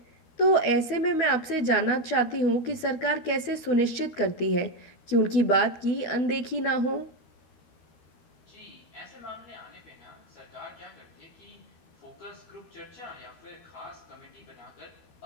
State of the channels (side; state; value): right; late; 13 ms